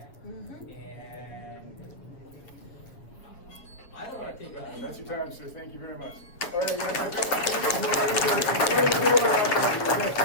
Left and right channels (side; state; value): right; late; 8.2 ms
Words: And I don't wanna take on. That's your time, sir. Thank you very much. All right,